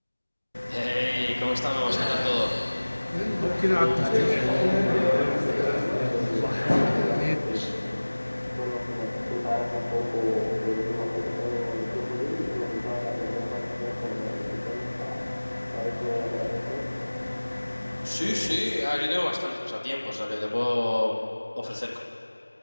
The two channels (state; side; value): inverted; both; correlation -1.00